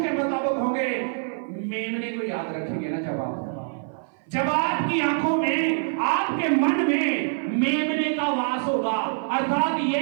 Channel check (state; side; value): silent; left; 55 dB below the other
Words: के मुताबिक होंगे, मेमने को याद रखेंगे ना, जब आपकी आंखों में, आपके मन में मेमने का वास होगा, अर्थात